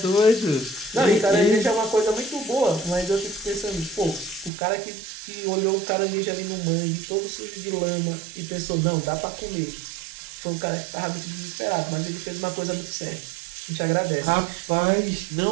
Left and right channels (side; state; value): left; drops out; at 4.5 s